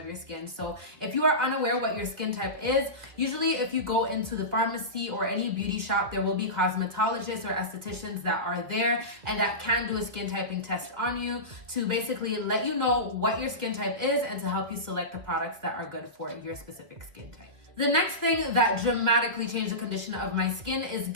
your skin. So if you are unaware what your skin type is, usually if you go into the pharmacy or any beauty shop, there will be cosmetologists or estheticians that are there and that can do a skin typing test on you to basically let you know what your skin type is and to help you select the products that are good for your specific skin type. The next thing that dramatically changed the condition of my skin is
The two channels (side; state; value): left; late; 1.8 ms